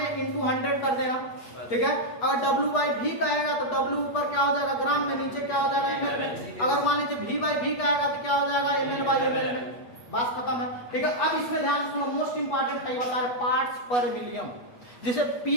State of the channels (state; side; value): late; right; 8.3 ms